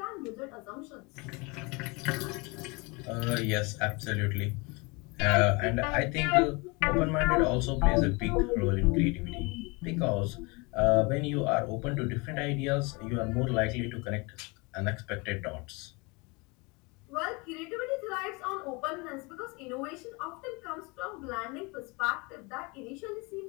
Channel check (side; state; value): right; quieter; 27.8 dB